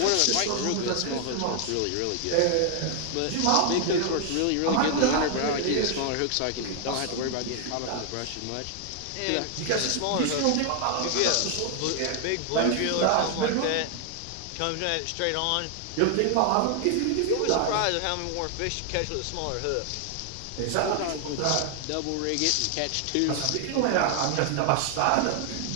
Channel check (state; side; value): different; both; correlation 0.00